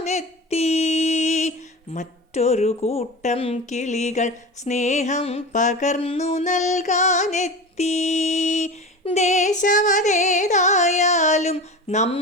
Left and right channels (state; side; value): normal; both; correlation 0.30